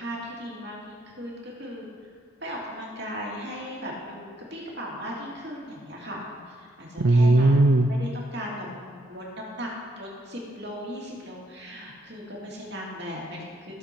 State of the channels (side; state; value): both; normal; correlation 0.75